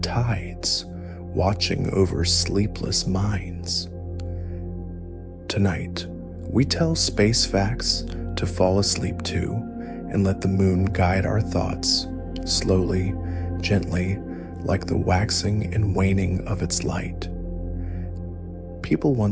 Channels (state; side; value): identical; both; correlation 1.00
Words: watching over sleepless minds. Tonight, we tell space facts to fall asleep to and let the moon guide our thoughts, slowly, gently, like the waxing and waning of its light. People